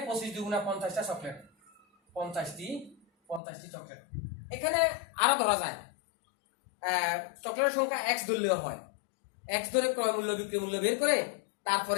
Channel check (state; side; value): drops out; right; at 3.4 s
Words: 25 2 × 50টা চকলেট, 50টি চকলেট। এখানে আরো ধরা যায়, চকলেটের সংখ্যা x ধরলেও হয়। x ধরে ক্রয় মূল্য বিক্রয় মূল্য বের করে